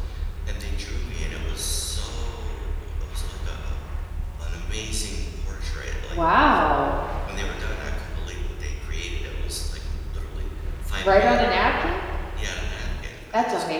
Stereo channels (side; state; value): both; identical; correlation 1.00